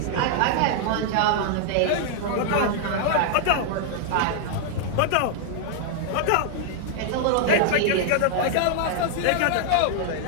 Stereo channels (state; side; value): different; both; correlation -0.01